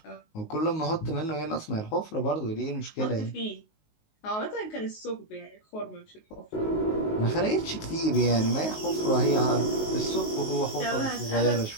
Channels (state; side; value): late; right; 19 ms